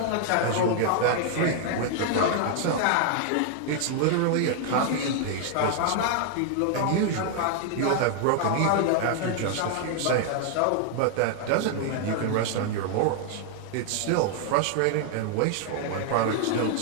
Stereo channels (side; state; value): both; different; correlation 0.00